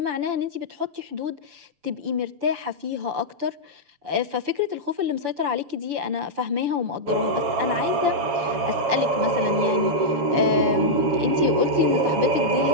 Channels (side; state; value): left; late; 6.9 ms